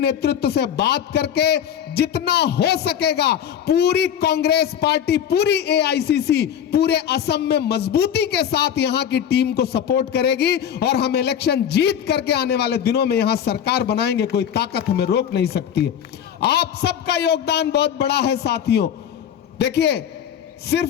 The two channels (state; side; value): quieter; right; 9.2 dB